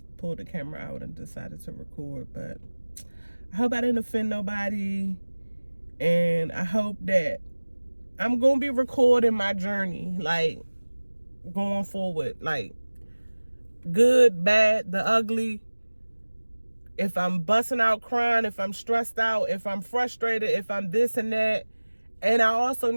pulled the camera out and decided to record. But I hope I didn't offend nobody, and I hope that I'm gonna be recording my journey, like, going forward, like, good, bad, the ugly. If I'm busting out crying, if I'm stressed out, if I'm frustrated, if I'm this and that. And I also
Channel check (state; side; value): inverted; both; correlation -1.00